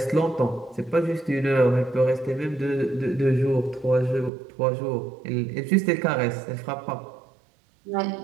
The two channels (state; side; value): drops out; left; at 4.3 s